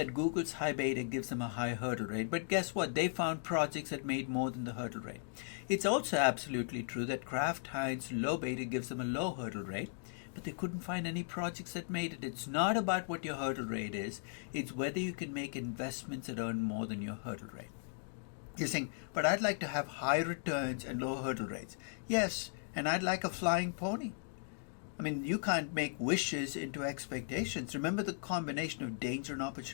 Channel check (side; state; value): right; silent; digital silence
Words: Google's high beta gives them a high hurdle rate, but guess what? They found projects that made more than the hurdle rate. It's also absolutely true that Kraft Heinz low beta gives them a low hurdle rate, but they couldn't find any projects that made it. It's not about what your hurdle rate is, it's whether you can make investments that earn more than your hurdle rate. You're saying, but I'd like to have high returns and low hurdle rates. Yes, and I'd like a flying pony. I mean, you can't make wishes into expectations. Remember the combination of danger and